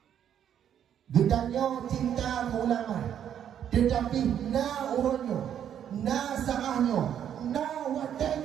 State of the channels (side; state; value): left; quieter; 9.5 dB